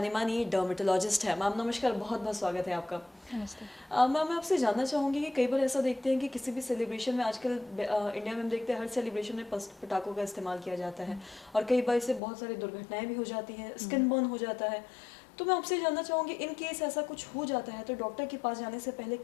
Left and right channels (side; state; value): right; drops out; at 12.2 s